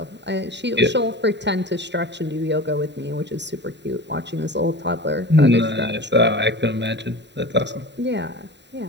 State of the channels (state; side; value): late; left; 0.51 ms